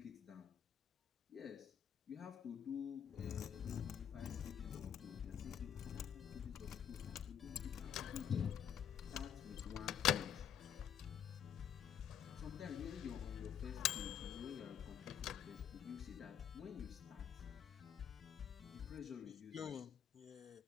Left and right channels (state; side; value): quieter; right; 8.9 dB